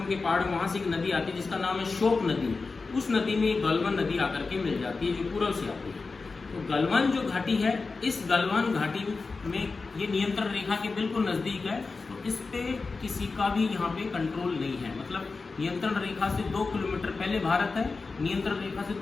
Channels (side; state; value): right; quieter; 4.1 dB